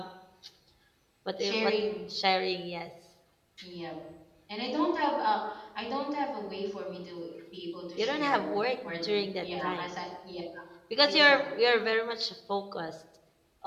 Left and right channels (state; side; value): identical; both; correlation 1.00